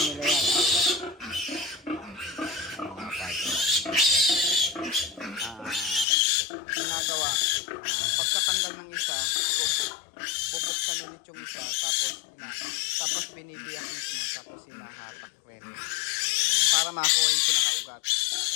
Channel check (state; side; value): drops out; right; at 6.1 s